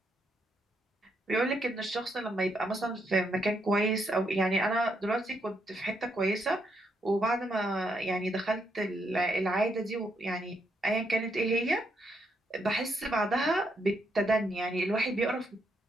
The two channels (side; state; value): both; normal; correlation 0.77